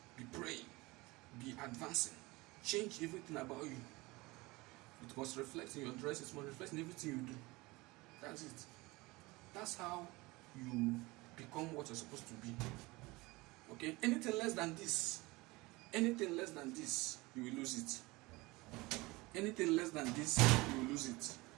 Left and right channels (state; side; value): quieter; left; 22.4 dB